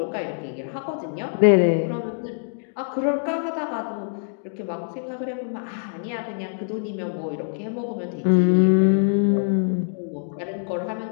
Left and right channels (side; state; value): right; silent; digital silence